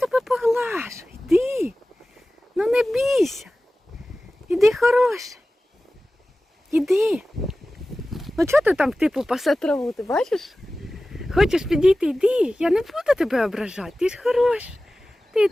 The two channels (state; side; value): normal; both; correlation 0.96